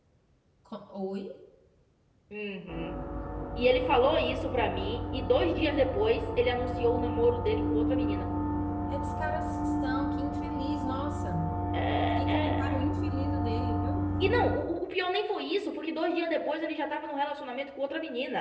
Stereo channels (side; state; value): both; identical; correlation 1.00